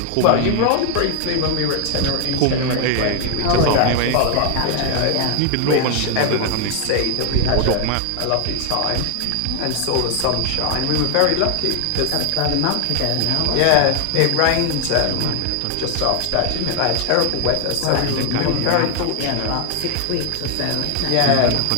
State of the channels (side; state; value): both; different; correlation 0.00